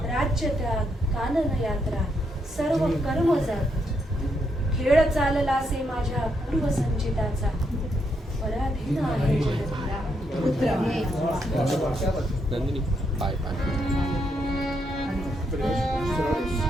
राज्य त्याग कानन यात्रा सर्व कर्म जात. खेळ चाललासे माझ्या पूर्वसंचिताचा, पराधीन आहे जगत्या पुत्र. नंदिनी पाय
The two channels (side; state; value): both; normal; correlation 0.78